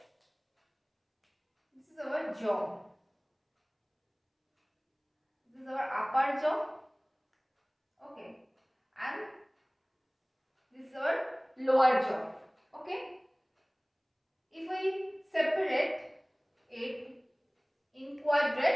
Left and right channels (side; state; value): both; identical; correlation 1.00